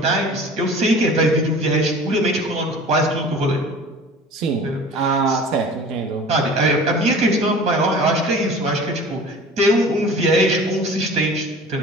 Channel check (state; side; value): normal; both; correlation 0.42